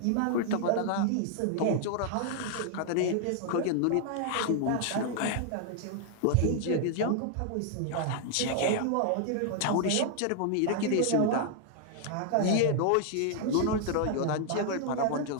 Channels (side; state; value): both; different; correlation 0.00